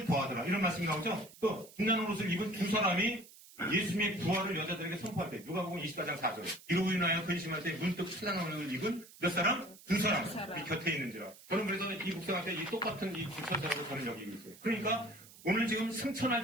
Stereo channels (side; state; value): right; noise; hiss, 21 dB below the sound